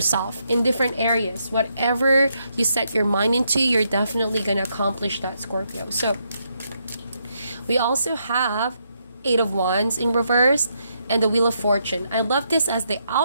in different areas. Whatever you set your mind into, you're definitely going to accomplish that, Scorpio. So we also have Eight of Wands in reverse and the Wheel of Fortune. I love this as the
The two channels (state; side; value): inverted; both; correlation -0.78